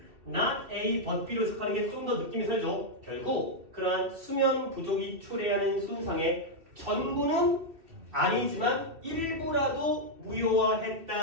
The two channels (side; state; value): left; late; 2.5 ms